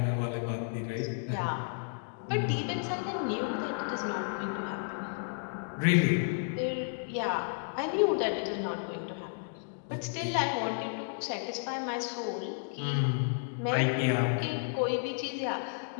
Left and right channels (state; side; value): silent; right; digital silence